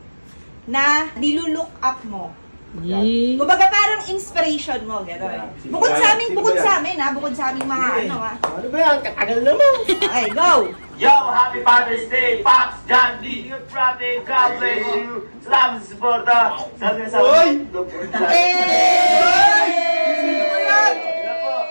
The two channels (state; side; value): inverted; both; correlation -1.00